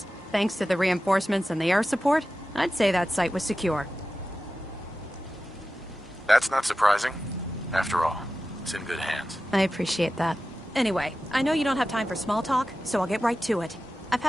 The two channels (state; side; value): normal; both; correlation 0.94